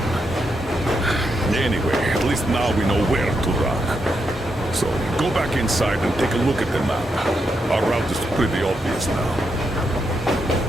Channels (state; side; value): normal; both; correlation 0.82